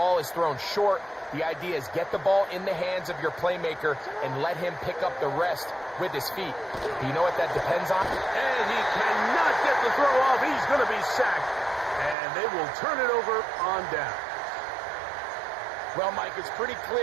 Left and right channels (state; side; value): drops out; left; at 12.2 s